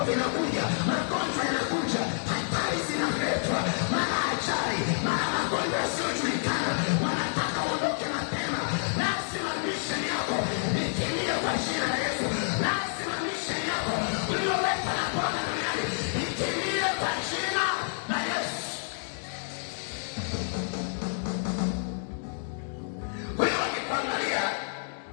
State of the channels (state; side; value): silent; right; digital silence